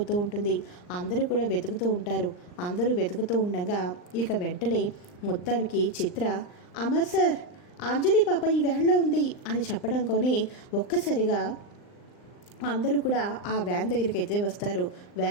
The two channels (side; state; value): right; late; 39 ms